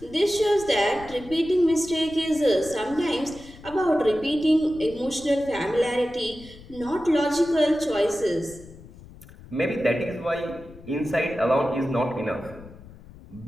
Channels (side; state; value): left; noise; rumble, 19 dB below the sound